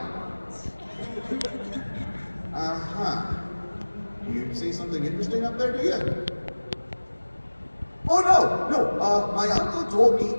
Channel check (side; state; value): both; inverted; correlation -1.00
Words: You see something interesting up there, do you? Oh, no. My uncle told